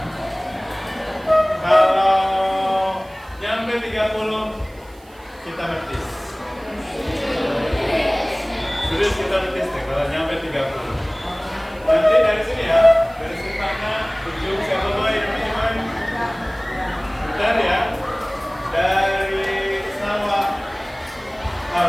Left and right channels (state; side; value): noise; right; hiss, 28 dB below the sound